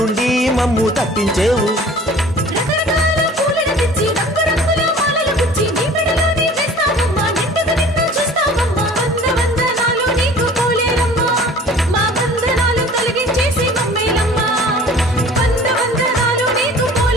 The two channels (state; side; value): normal; both; correlation 0.47